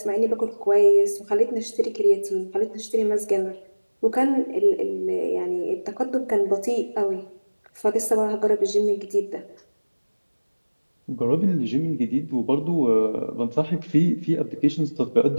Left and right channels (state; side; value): inverted; both; correlation -1.00